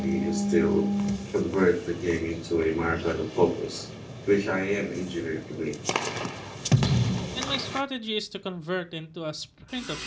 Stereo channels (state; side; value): identical; both; correlation 1.00